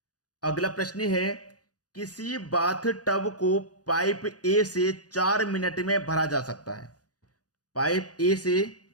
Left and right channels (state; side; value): late; right; 0.68 ms